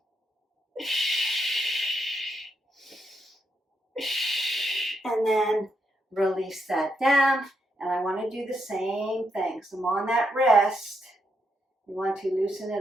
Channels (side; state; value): both; normal; correlation 0.80